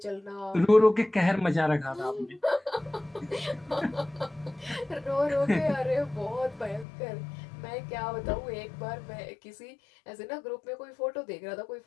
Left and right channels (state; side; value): drops out; right; at 6.9 s